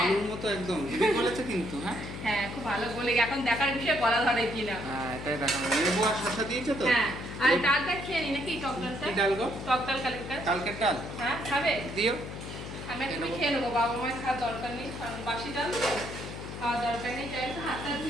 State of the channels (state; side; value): noise; left; hum, 9 dB below the sound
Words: আলুর মতো একদম, দিদি বলেছে কিন্তু। হ্যাঁ হ্যাঁ খুব ভালো বলে, এখন দেখার বিষয় গলা ধরে কিনা। হ্যাঁ এটাই দেখা যাবে। লেবু আর শসা দিয়েছো তো? হ্যাঁ আর ডালটা খেয়ে নি নাকি, টক ডালটা? কি ডাল গো? টক ডাল কালকের। কালকের ডাল হ্যাঁ খাবে? দিও। আমি একটু খেয়ে নেবো, বাবা মায়ের খাওয়ার দরকার নেই, কারণ বাসি ডাল তো খাওয়ার দরকার নেই। যাই হোক হাতটা